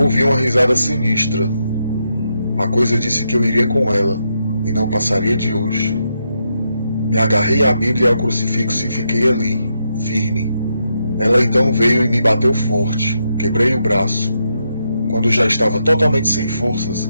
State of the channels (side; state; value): both; inverted; correlation -0.81